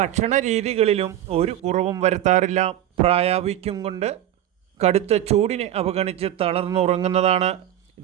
രീതികളിലും ഒരു കുറവും വരുത്താറില്ല. പ്രായാധിക്യം കൊണ്ട് കടുത്ത ചൂടിനെ അവഗണിച്ച് തളർന്നുറങ്ങുന്നതാണ്.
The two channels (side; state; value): left; quieter; 12.0 dB